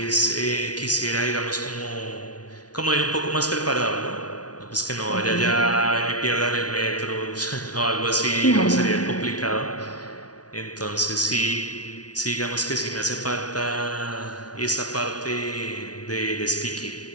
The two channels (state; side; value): late; right; 0.69 ms